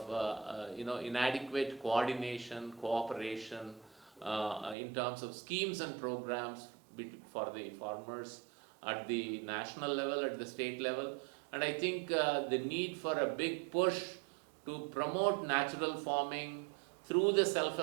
inadequate coordination, cooperation in terms of schemes and programs for the farmers at the national level, at the state level. And I think the need for a big push to promote natural farming through the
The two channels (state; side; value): drops out; left; at 4.8 s